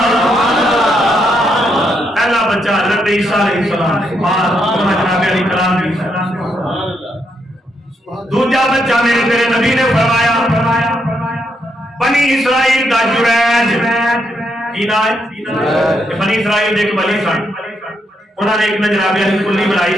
پہلا بچہ حضرت عیسیٰ علیہ السلام ماں جناب علی کلام کی. دوسرا بچہ میرے تیرے نبی نے فرمایا بنی اسرائیل دا جریج کی نام ہے. بنی اسرائیل ایک ولی سن انہوں نے ایک جناب علی کلی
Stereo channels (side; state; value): both; normal; correlation 0.78